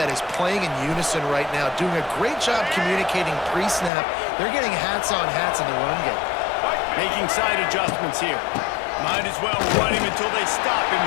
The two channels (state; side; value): drops out; right; at 3.9 s